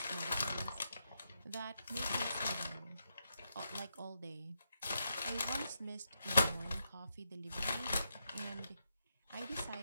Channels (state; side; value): inverted; both; correlation -0.82